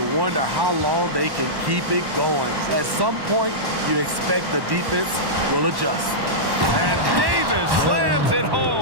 wonder how long they can keep it going. At some point, you expect the defense will adjust. And Davis slams it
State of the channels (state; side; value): late; left; 1.1 ms